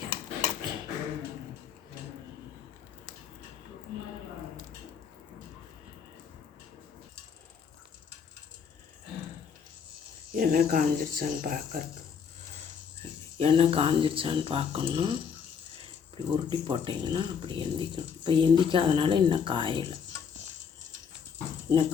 எண்ணெய் காஞ்சிருச்சான்னு பார்க்கணும். இப்படி உருட்டி போட்டிங்கன்னா அப்படி எந்திக்கணும். இப்போ எந்திக்காதனால இன்னும் காயலை, இன்னும்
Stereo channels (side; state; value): right; quieter; 6.8 dB